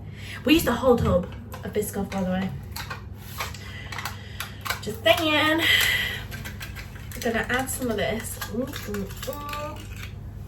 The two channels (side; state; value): both; identical; correlation 1.00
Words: we used a whole tub of biscoff, by the way. Just saying. I'm gonna add some of this.